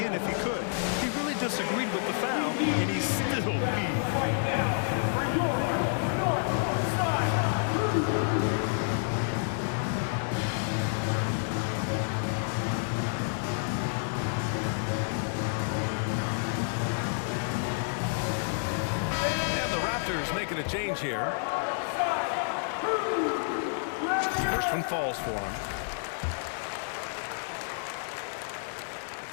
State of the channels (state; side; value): silent; right; digital silence